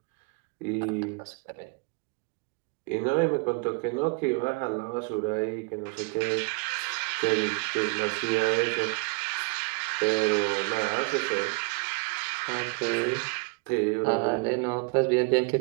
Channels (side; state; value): left; quieter; 31.1 dB